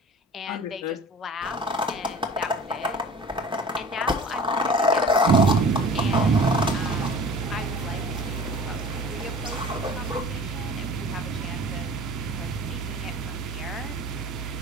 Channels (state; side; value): normal; both; correlation 0.41